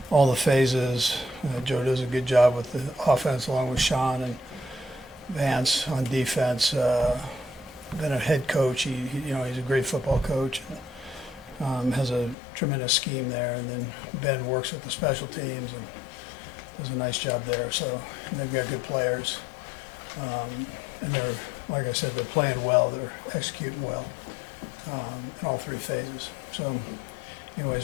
the phases. Joe does a good job with the offense along with Sean and Vance on defense. Been a head coach. He's a great football coach. And, has a tremendous scheme there. And then Ben works with the special teams and does a nice job there. So and they've got good players. And they're, like I said, they're playing well. They're executing well in all three phases. So, anyways,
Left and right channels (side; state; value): right; drops out; at 12.4 s